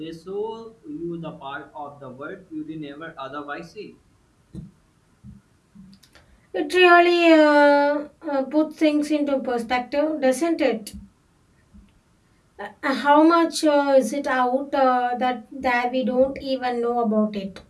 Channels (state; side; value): identical; both; correlation 1.00